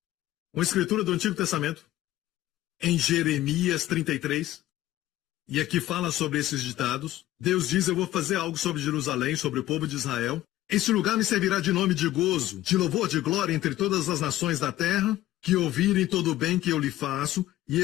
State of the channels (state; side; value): quieter; right; 14.9 dB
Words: Uma escritura do Antigo Testamento, em Jeremias 33, e aqui fala sobre esses ditados. Deus diz, eu vou fazer algo sobre Jerusalém, sobre o povo de Israel. Este lugar me servirá de nome de gozo, de louvor, de glória entre todas as nações da terra, que ouvirem todo o bem que eu lhe faço, e